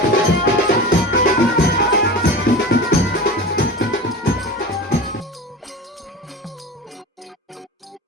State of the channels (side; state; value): both; normal; correlation 0.31